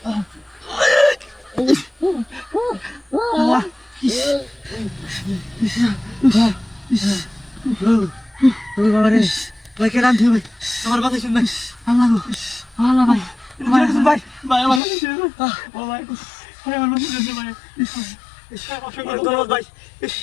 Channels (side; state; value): right; drops out; at 14.8 s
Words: ভাই কেন আনতে ভাই আমার কথা শুন ভাই আল্লাহ গো আল্লাহ ভাই ভাই ভাই আমার ও ভাই আমার মনে হচ্ছে ভাই ভাই